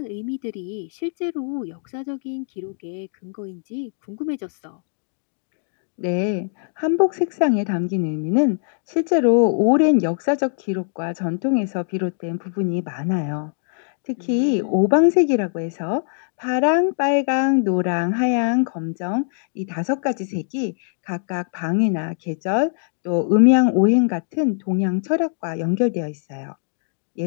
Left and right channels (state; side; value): silent; right; digital silence